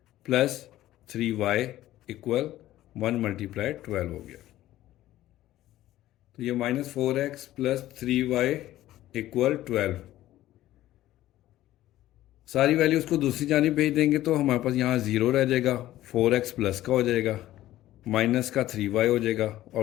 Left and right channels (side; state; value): right; quieter; 14.6 dB